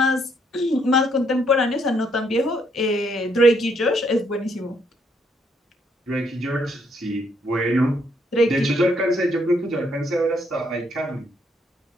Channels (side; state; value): both; normal; correlation 0.71